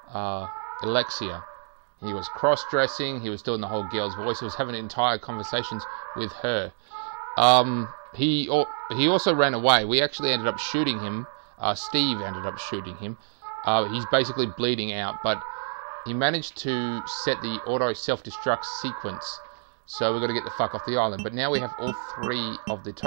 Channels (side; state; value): left; silent; 60 dB below the other